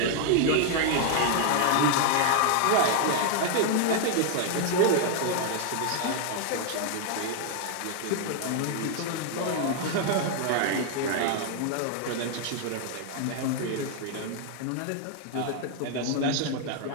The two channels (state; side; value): different; both; correlation 0.00